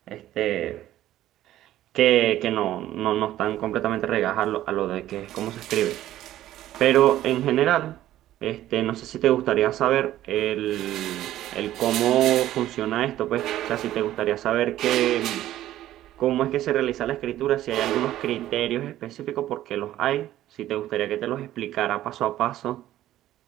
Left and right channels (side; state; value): left; quieter; 13.6 dB